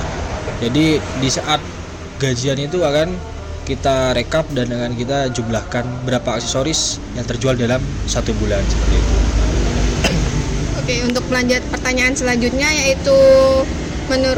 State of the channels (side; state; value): both; identical; correlation 1.00